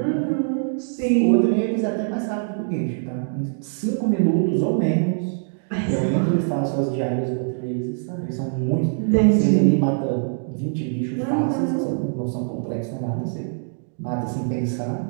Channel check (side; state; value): left; silent; digital silence